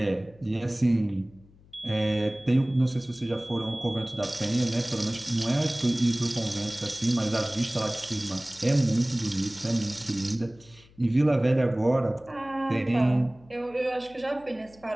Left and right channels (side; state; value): left; noise; hum, 26 dB below the sound